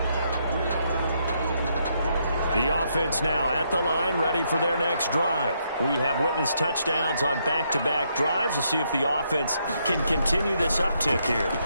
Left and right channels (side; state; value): both; inverted; correlation -0.76